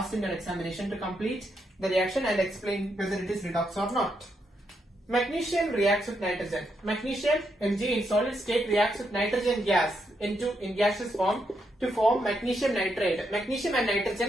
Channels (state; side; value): normal; both; correlation 0.80